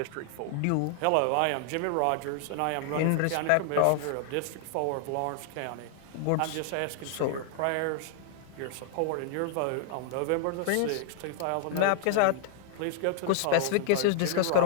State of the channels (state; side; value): different; both; correlation -0.01